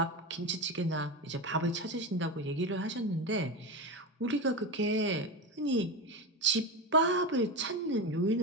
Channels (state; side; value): normal; both; correlation 0.18